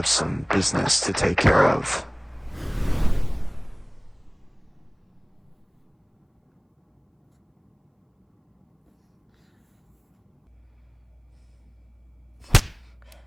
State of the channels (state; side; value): identical; both; correlation 1.00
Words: some business to take care of.